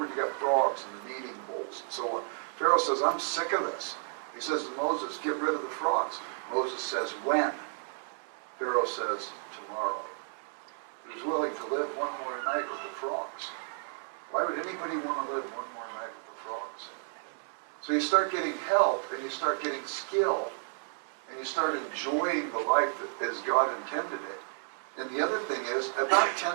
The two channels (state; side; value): silent; left; 56 dB below the other